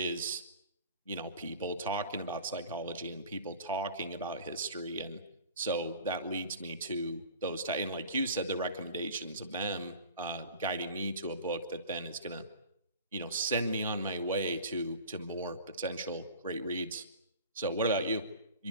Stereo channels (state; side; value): inverted; both; correlation -0.42